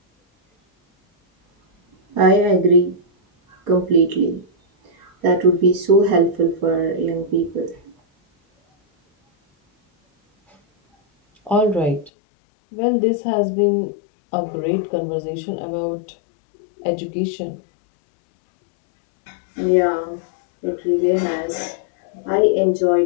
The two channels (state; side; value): drops out; right; at 12.1 s